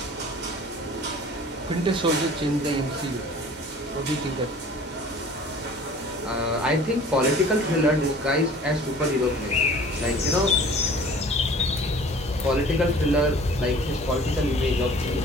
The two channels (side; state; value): both; normal; correlation 0.47